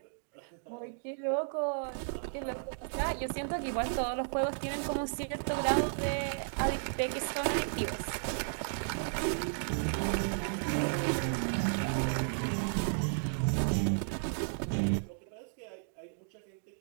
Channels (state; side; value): silent; left; digital silence